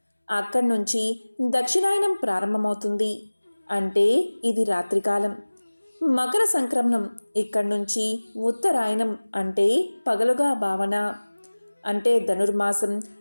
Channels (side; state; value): both; inverted; correlation -1.00